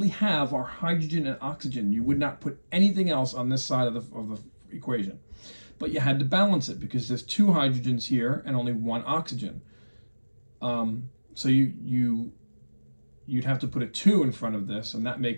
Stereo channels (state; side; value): inverted; both; correlation -1.00